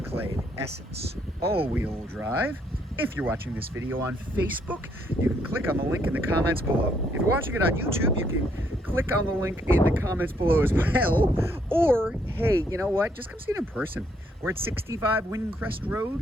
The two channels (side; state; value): both; normal; correlation 0.71